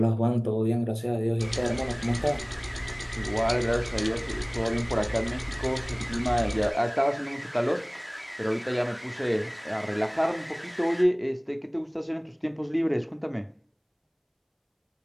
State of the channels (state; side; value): identical; both; correlation 1.00